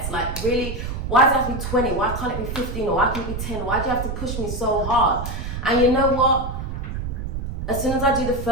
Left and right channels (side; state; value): right; noise; rumble, 5 dB below the sound